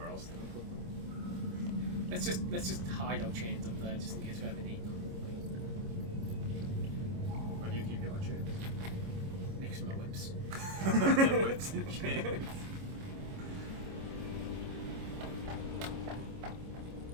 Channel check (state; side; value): late; left; 25 ms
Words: else did we put them? Let's just hide our chains up there just in case we ever need them. Where do you keep your chains? Next to my whips. Whips and chains.